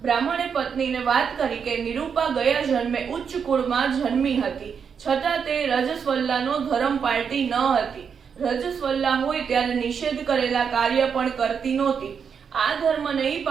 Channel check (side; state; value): left; quieter; 6.7 dB